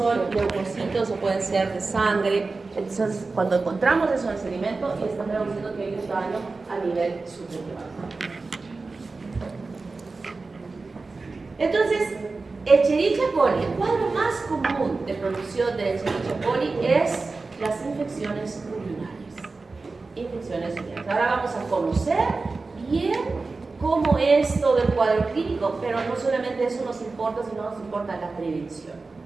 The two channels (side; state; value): left; quieter; 3.8 dB